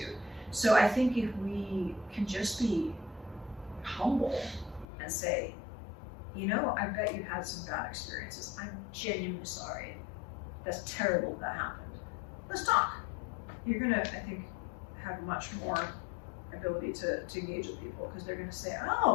So I think if we can just be humble and say, I bet you've had some bad experiences. I'm genuinely sorry. That's terrible that happened. Let's talk. You're gonna, I think, have much more ability to engage with people, because they're gonna say,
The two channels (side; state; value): right; drops out; at 4.9 s